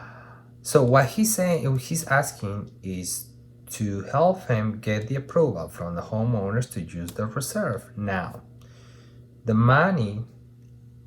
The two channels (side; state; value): both; identical; correlation 1.00